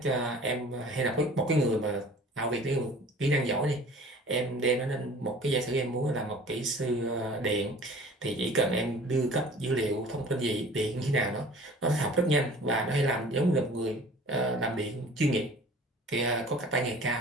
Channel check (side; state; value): both; normal; correlation 0.46